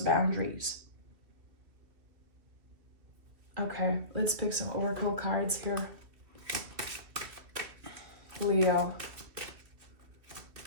boundaries. Okay, let's pick some oracle cards here. Leo.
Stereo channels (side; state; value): left; late; 2.4 ms